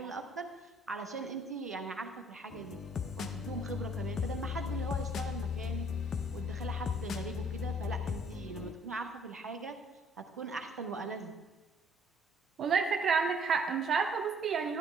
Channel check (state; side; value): normal; both; correlation 0.60